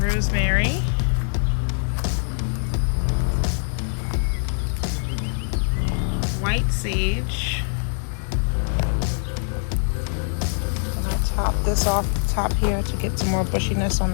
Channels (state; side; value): silent; right; digital silence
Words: White sage. And I top this off the top here to get some more bushiness on